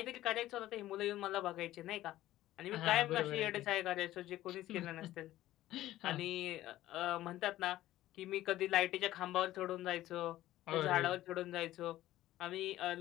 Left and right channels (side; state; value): right; quieter; 14.8 dB